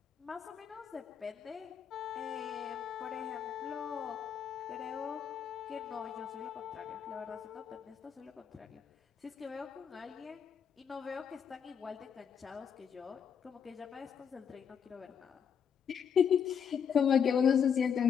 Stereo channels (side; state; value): right; quieter; 7.5 dB